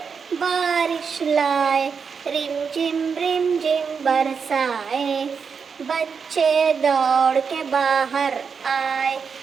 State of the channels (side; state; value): left; quieter; 6.0 dB